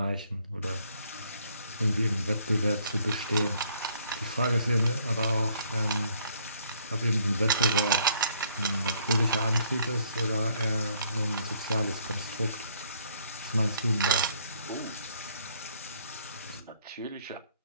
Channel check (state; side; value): inverted; both; correlation -0.65